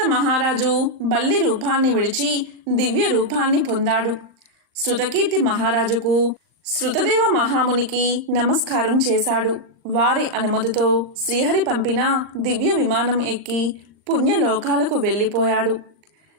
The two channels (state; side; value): late; left; 39 ms